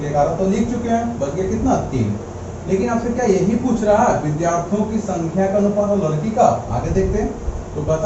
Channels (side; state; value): both; identical; correlation 1.00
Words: 11 तो लिख चुके हैं, बच गया कितना, 3। लेकिन आपसे क्या यही पूछ रहा है, विद्यार्थियों की संख्या का अनुपात और लड़की का। आगे देखते हैं, तो